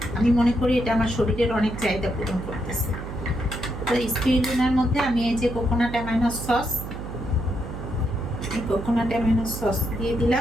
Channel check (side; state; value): right; noise; hum, 8 dB below the sound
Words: আমি মনে করি এটা আমার শরীরের অনেক চাহিদা পূরণ করতেছে। তো স্পিরুলিনার মধ্যে আমি এই যে কোকোনাট অ্যামাইনো সস, এই কোকোনাট অ্যামাইনো সস দিয়ে